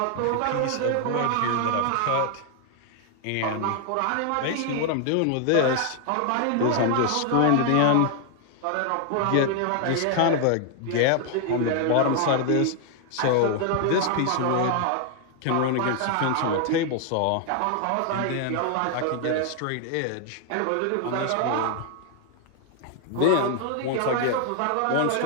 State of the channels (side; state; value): both; different; correlation 0.00